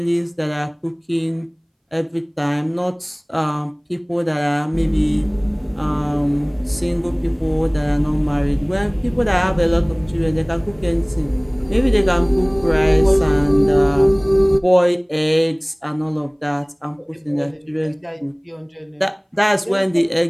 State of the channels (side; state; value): both; identical; correlation 1.00